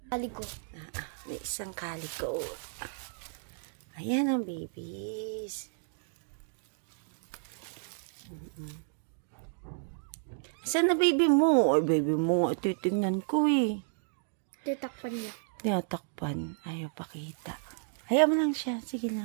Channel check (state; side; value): silent; left; digital silence